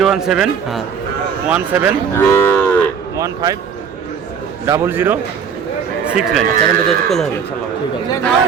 হ্যাঁ 17 15 0069। চ্যানেল যোগাযোগ করলে হবে। ঠিক আছে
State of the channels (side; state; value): left; quieter; 6.9 dB